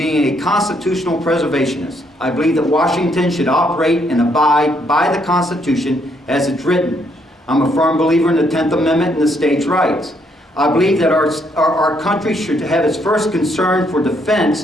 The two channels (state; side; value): normal; both; correlation 0.72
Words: a constitutional preservationist. I believe that Washington should operate and abide by the Constitution as it's written. I'm a firm believer in the 10th Amendment and the states' rights. I believe that our country should have its first concern for